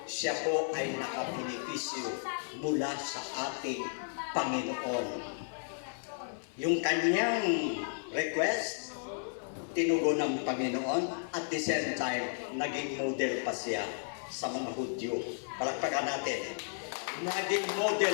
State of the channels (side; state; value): right; silent; 55 dB below the other